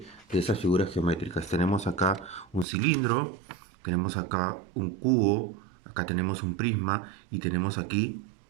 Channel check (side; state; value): left; drops out; at 2.7 s